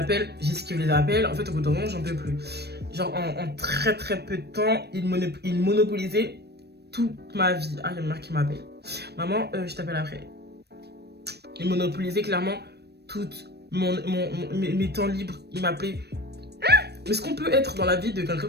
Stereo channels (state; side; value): late; left; 0.47 ms